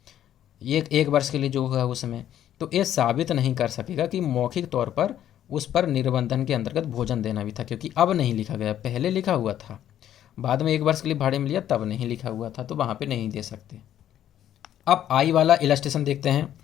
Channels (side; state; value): right; quieter; 11.2 dB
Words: ये 1 वर्ष के लिए जो है उसमें, तो ये साबित नहीं कर सकेगा कि मौखिक तौर पर उस पर निबंधन के अंतर्गत भोजन देना भी था, क्योंकि अब नहीं लिखा गया, पहले लिखा हुआ था, बाद में 1 वर्ष के लिए भाड़े में लिया तब नहीं लिखा हुआ था, तो वहाँ पे नहीं दे सकते। अब आई वाला इलस्ट्रेशन देखते हैं।